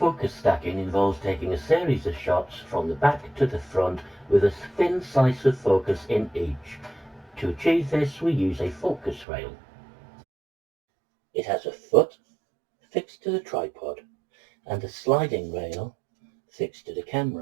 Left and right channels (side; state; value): left; drops out; at 9.2 s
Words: stacking involves taking a series of shots from the back to the front with a thin slice of focus in each. To achieve this, we use a focus rail. It has a foot fixed to the tripod and a sliding rail fixed to the